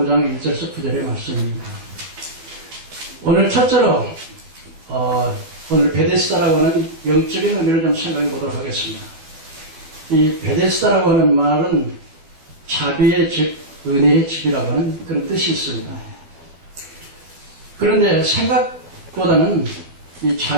1절에서 9절의 말씀입니다. 오늘 첫째로 오늘 베데스다라고 하는 영적인 의미를 좀 생각해 보도록 하겠습니다. 이 베데스다라고 하는 말은 자비의 집, 은혜의 집이라고 하는 그런 뜻이 있습니다. 그런데 생각보다는 이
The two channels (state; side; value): late; left; 12 ms